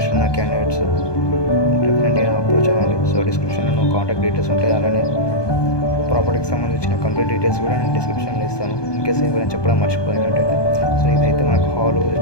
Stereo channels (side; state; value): right; late; 1.2 ms